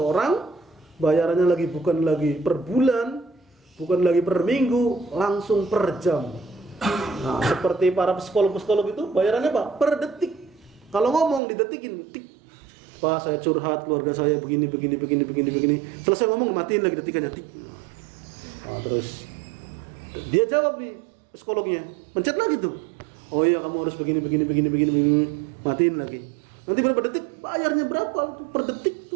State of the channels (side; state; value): left; drops out; at 11.4 s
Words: bayarannya bukan lagi per bulan, bukan lagi per minggu, langsung per jam. Nah, seperti para psikolog itu bayarannya apa? Per detik. Kalau ngomong didetikin, tik. Pak, saya curhat, keluarga saya begini. Selesai ngomong, matiin lagi detikannya, tik. Nah, terus dia jawab nih psikolognya, pencet lagi tuh. Oh iya, kamu harus begini, matiin lagi. Nanti berapa detik, bayarnya berapa tuh per detik